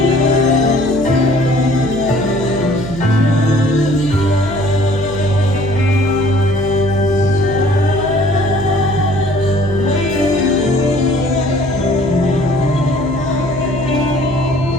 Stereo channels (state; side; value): noise; right; hum, 11 dB below the sound